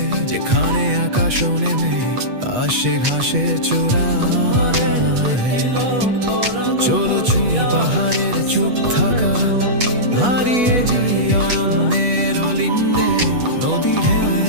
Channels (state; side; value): late; left; 8.2 ms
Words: যেখানে আকাশ নেমে আসে ঘাসের চূড়ায়। চলো ছুঁই পাহাড়ের চুপ থাকা, হারিয়ে যাই অরণ্যের অলিন্দে। নদী